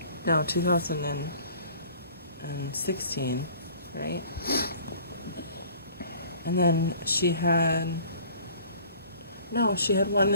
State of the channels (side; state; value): both; inverted; correlation -0.50